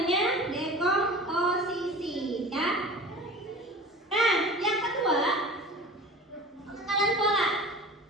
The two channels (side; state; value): both; normal; correlation 0.38